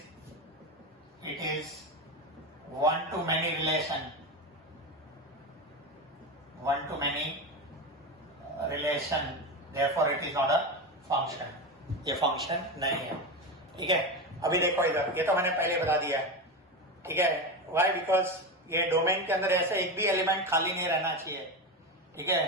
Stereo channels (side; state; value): both; normal; correlation 0.18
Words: 1 to many relation, 1 to many relation, therefore it is not a function। ये function नहीं है, ठीक है। अभी देखो इधर, ये तो मैंने पहले बता दिया है, ठीक है। Why? Because ये डोमेन के अंदर ऐसे एक भी एलिमेंट खाली नहीं रहना चाहिए, ठीक